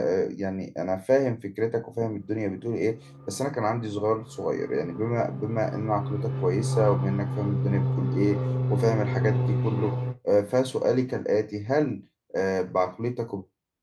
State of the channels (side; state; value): both; identical; correlation 1.00